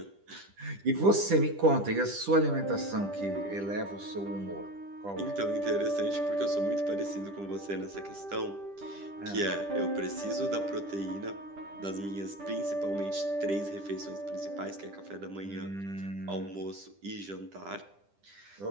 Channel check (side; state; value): left; late; 10 ms